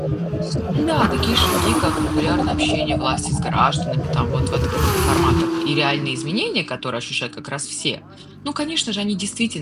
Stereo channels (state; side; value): identical; both; correlation 1.00